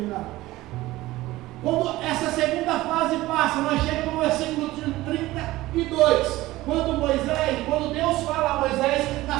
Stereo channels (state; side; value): quieter; left; 17.7 dB